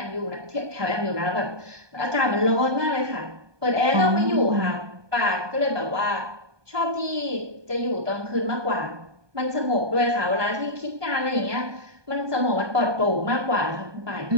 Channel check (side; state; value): left; late; 1.2 ms